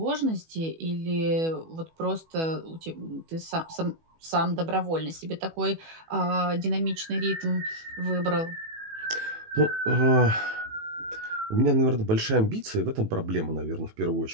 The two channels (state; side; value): late; left; 18 ms